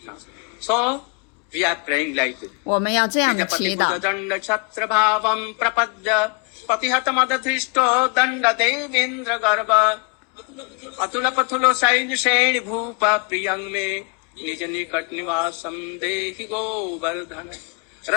So we are praying like this. 我们要这样的祈祷。 दंड छत्र भावं प्रपद्य पतिहत मदधृष्टो दंड देवेन्द्र गर्भ अतुल पथुलो शैल श्रेणी भूप प्रियंग में निज निकट निवासम देहि गोवर्धन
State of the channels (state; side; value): quieter; right; 34.1 dB